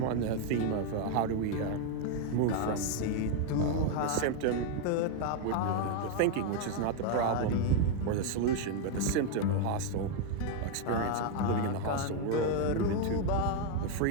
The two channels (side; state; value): both; different; correlation 0.01